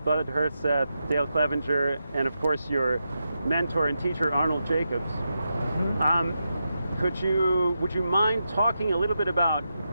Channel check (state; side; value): inverted; both; correlation -0.87